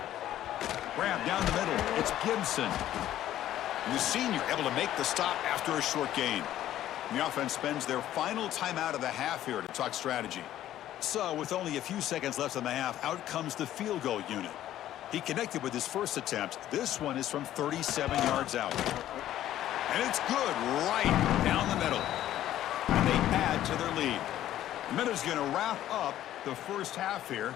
Grab down the middle. It's Gibson. And the senior able to make the stop after a short gain. And the offense spends their final timeout of the half here to talk strategy. So with only a few seconds left in the half, out comes the field goal unit. He connected with his first attempt. This one is from 37 yards out. And it's good right down the middle. And they add to their lead. The Minutes going to wrap up the first half here.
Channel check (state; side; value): quieter; right; 12.7 dB